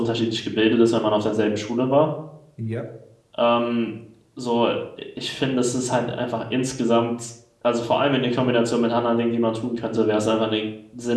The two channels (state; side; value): identical; both; correlation 1.00